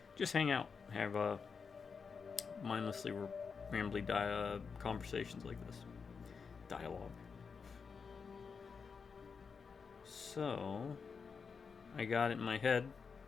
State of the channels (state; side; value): quieter; right; 5.6 dB